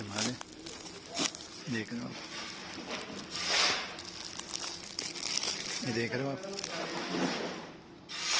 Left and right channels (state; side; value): identical; both; correlation 1.00